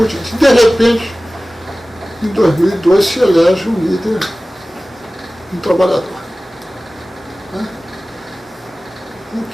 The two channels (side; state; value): both; normal; correlation 0.97